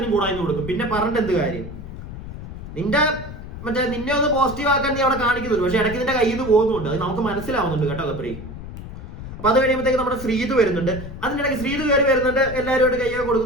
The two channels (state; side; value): noise; left; rumble, 11 dB below the sound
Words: കൂടായി കൊടുക്കും. പിന്നെ പറഞ്ഞിട്ട് എന്ത് കാര്യം? നിന്നെ ഒന്ന് പോസിറ്റീവ് ആക്കാൻ നീ അവിടെ കാണിക്കുന്നുള്ളൂ, പക്ഷെ ഇടയ്ക്ക് നിന്റെ കയ്യിൽ നിന്ന് പോകുന്നുണ്ട്. അത് നമുക്ക് മനസ്സിലാവുന്നുണ്ട് കേട്ടോ ഗബ്രി. അപ്പൊ അത് കഴിയുമ്പോഴത്തേക്ക് നമ്മുടെ ശ്രീതു വരുന്നുണ്ട്. അതിനിടയ്ക്ക് ശ്രീതു കയറി വരുന്നുണ്ട്, എല്ലാവരുമായിട്ട് കൈയൊക്കെ